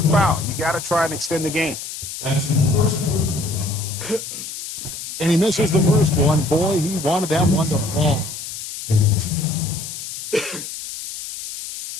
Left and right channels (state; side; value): noise; left; hiss, 9 dB below the sound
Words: foul. You got to try and extend the game. And he misses the first one. Boy, he wanted that one to fall.